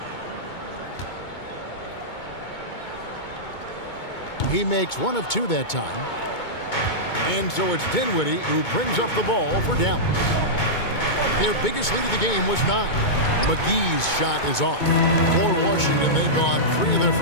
He makes 1 of 2 that time. And so it's Dinwiddie who brings up the ball for Dallas. Their biggest lead of the game was 9. McGee's shot is off. For Washington, they've gone 3 of their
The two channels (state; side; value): late; right; 2.2 ms